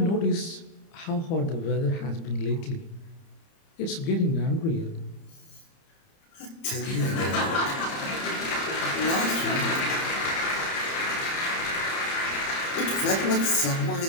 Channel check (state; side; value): late; right; 30 ms